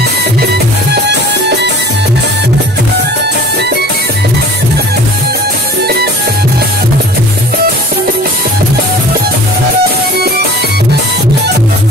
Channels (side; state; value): both; normal; correlation 0.45